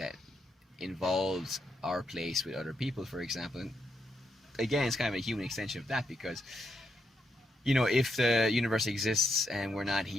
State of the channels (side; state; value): both; normal; correlation 0.79